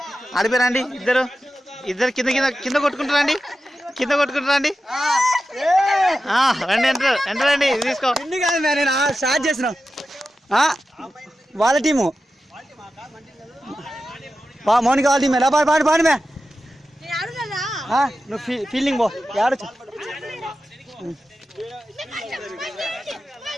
అడిపోరండి ఇద్దరు ఇద్దరు కింద కింద కింద కొట్టుకుంటారండి కింద కొట్టుకుంటారండి రండి ఎంటర్ ఎంటరండి తీసుకో ఇన్ని కాదు నేను స్టార్ట్ చేసిన వాళ్ళ టీము మౌనిక వాళ్ళ టీమే పాడు పాడు పాడు మే నువ్వు ఫీల్డింగ్ పో ఆడచ్చు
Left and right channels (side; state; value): both; normal; correlation 0.92